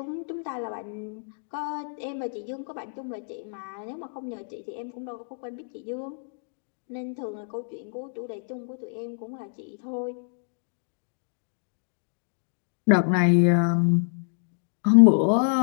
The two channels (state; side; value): silent; right; digital silence